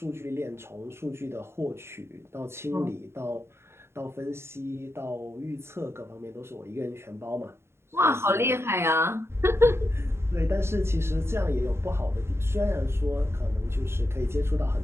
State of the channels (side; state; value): left; late; 0.12 ms